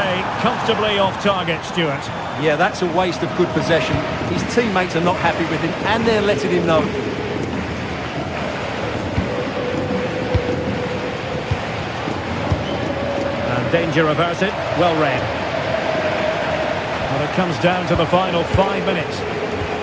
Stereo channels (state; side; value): identical; both; correlation 1.00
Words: comfortably off target, Stuart. Yeah, that's a waste of good possession. His teammates are not happy with him, and they're letting him know. And danger averted, well read. Well, it comes down to the final 5 minutes.